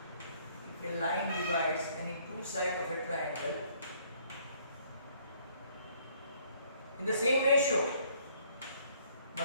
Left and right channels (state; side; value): inverted; both; correlation -0.63